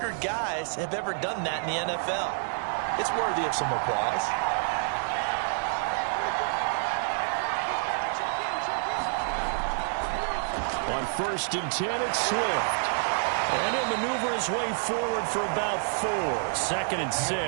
guys have ever done that in the NFL. It's worthy of some applause. On 1st and 10, it's Swift. And he'll maneuver his way forward for about 4. 2nd and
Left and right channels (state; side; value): silent; left; digital silence